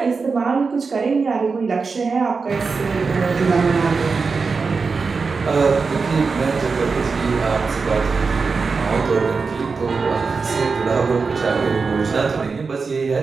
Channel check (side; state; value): left; quieter; 4.7 dB